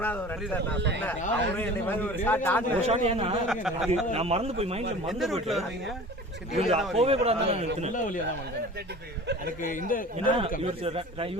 ஒரு அடிச்சா நான் சொன்னேன் அவரே என்னை மாதிரி ஒரு ஷாட் ஆடுற ஷாட். ஏன்னா நான் மறந்து போய் மைண்ட்ல மறந்து ரூட்ல வருவீங்க. போவே கூடாது. நல்ல வழியா தான் வந்தேன். எனக்கு இந்த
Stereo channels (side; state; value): both; normal; correlation 0.40